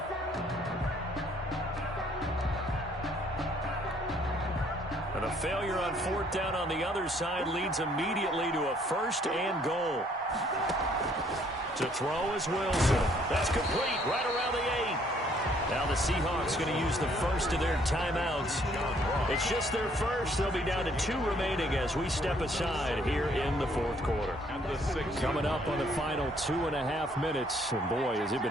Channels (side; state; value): both; normal; correlation 0.64